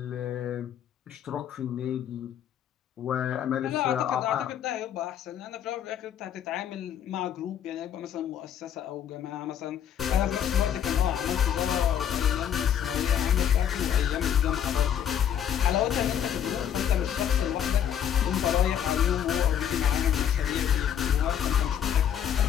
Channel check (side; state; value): right; quieter; 9.3 dB